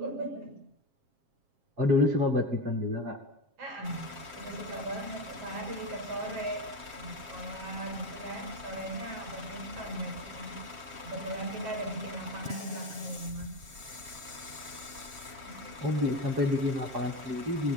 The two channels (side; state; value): left; late; 7.5 ms